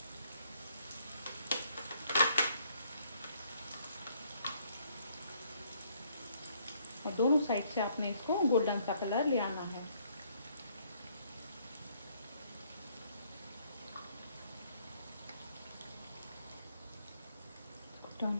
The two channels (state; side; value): inverted; both; correlation -0.67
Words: और दोनों साइड से आपने इसको गोल्डन सा कलर ले आना है। टर्न